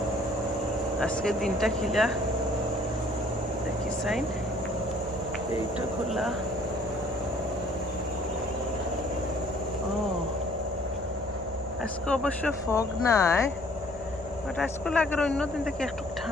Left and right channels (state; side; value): noise; right; hum, 16 dB below the sound